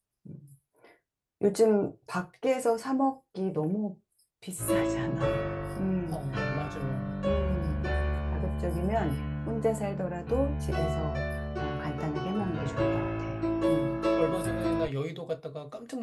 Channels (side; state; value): both; identical; correlation 1.00